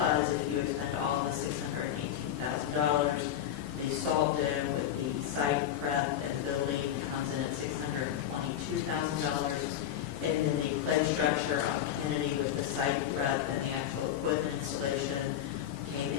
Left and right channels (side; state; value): right; quieter; 10.4 dB